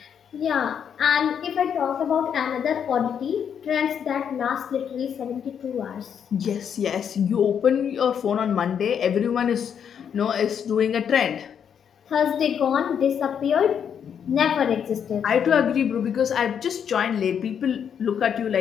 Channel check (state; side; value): quieter; right; 8.0 dB